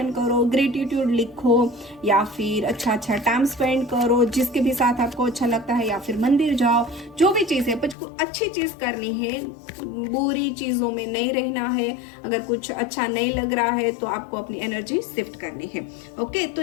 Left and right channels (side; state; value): right; drops out; at 8.0 s